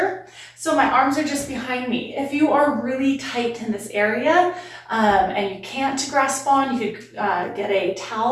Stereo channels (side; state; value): both; identical; correlation 1.00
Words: So my arms are just behind me. If you are really tight in this area and you can't grasp on, you could get a